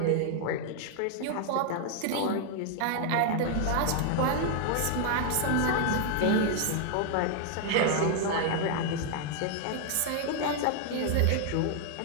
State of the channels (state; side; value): different; both; correlation 0.00